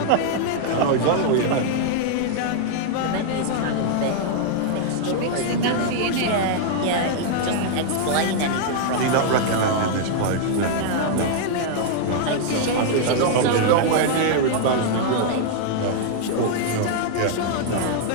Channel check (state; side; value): different; both; correlation -0.01